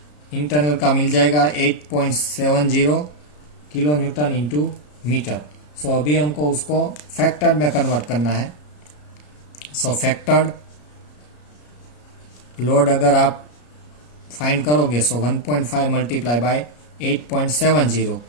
इंटरनल का मिल जाएगा 8.70 किलो न्यूटन इंटू मीटर। सो अभी हमको उसको फैक्टर्ड में कन्वर्ट करना है। सो फैक्टर्ड लोड अगर आप फाइंड करोगे सो 1.5 multiply by 8.70,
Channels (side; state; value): right; late; 34 ms